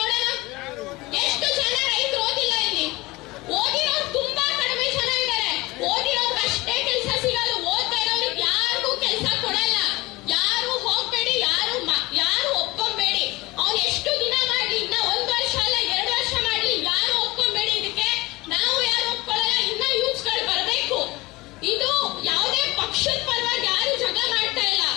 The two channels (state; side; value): quieter; right; 21.3 dB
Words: ಎಷ್ಟು ಜನ ರೈತರು ಓದಿಲ್ಲ ಇಲ್ಲಿ? ಓದಿರೋರು ತುಂಬಾ ಕಡಿಮೆ ಜನ ಇದ್ದಾರೆ. ಓದಿರೋರ್ಗೆ ಅಷ್ಟೇ ಕೆಲಸ ಸಿಗಲ್ಲ. ಓದ್ತಾ ಇರೋರಿಗೆ ಯಾರಿಗೂ ಕೆಲಸ ಕೊಡಲ್ಲ. ಯಾರು ಹೋಗ್ಬೇಡಿ, ಯಾರು ಒಪ್ಕೊಂಬೇಡಿ. ಅವ್ನು ಎಷ್ಟು ದಿನ ಮಾಡ್ಲಿ, ಇನ್ನ 1 ವರ್ಷ ಅಲ್ಲ 2 ವರ್ಷ ಮಾಡ್ಲಿ, ಯಾರು ಒಪ್ಕೊಂಬೇಡಿ. ಇದಕ್ಕೆ ನಾವು ಯಾರು ಒಪ್ಕೊಳ್ಳಲ್ಲ. ಇನ್ನ ಯೂತ್ಸ್ ಗಳು ಬರ್ಬೇಕು. ಇದು ಯಾವುದೇ ಪಕ್ಷದ ಪರವಾಗಿ ಯಾರು ಜಗಳ ಮಾಡ್ತಾ ಇಲ್ಲ.